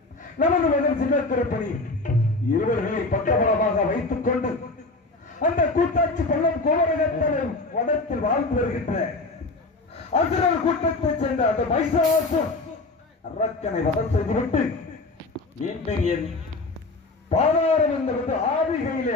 நமது மகன் சின்ன திருப்பணி இருவர்களை பக்கபலமாக வைத்துக் கொண்டு அந்த கூட்டாட்சி பள்ளம் கோவரகத்தனம் வனத்தில் வாழ்ந்து வருகின்ற அசுரர் கூட்டத்தைச் சேர்ந்த அந்த மைசாசுர் அரக்கனை வதம் செய்துவிட்டு மீண்டும் என் பாதாரம் என்பது ஆவிகையிலே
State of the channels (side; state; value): right; quieter; 3.3 dB